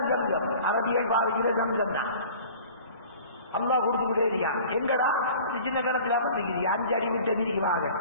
சம்சம். அரபியல் பாவிக்கிற சம்சம் தான். அல்லா கொடுத்துக்கிட்டே இருக்கான். எங்கடா சின்ன கணத்துல பண்ணிக்கிறீங்க 5 அடி விட்ட நீதிக்கு வாங்க.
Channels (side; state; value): both; inverted; correlation -0.45